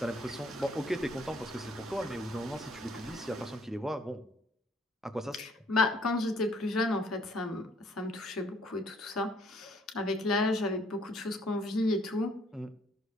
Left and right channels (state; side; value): normal; both; correlation 0.63